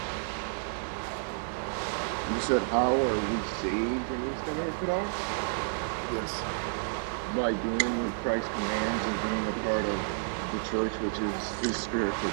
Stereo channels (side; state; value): left; silent; digital silence